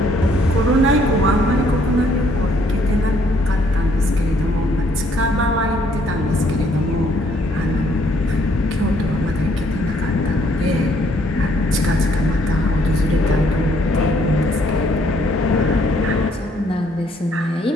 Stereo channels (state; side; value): normal; both; correlation 0.66